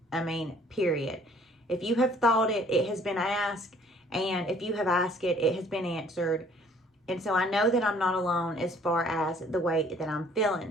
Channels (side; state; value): both; normal; correlation 0.58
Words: Period. If you have thought it, it has been asked. And if you have asked it, it has been answered. And so I know that I'm not alone as far as the way that I'm